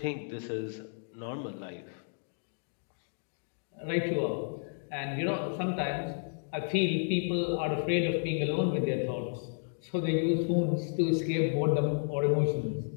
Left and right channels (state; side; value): silent; right; digital silence